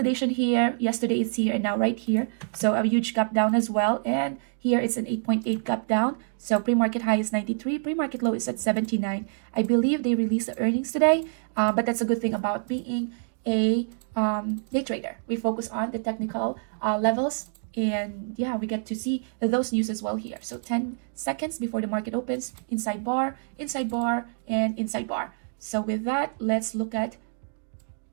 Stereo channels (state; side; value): silent; left; digital silence